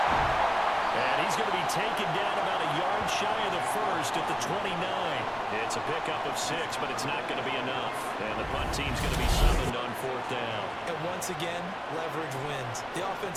And he's going to be taken down about a yard shy of the first at the 29. It's a pickup of 6, but it's not going to be enough. And the punt team's going to be summoned on 4th down. And once again, leverage wins. The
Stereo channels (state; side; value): identical; both; correlation 1.00